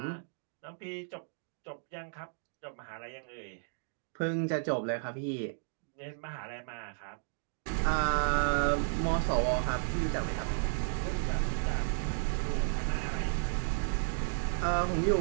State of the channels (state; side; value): silent; left; digital silence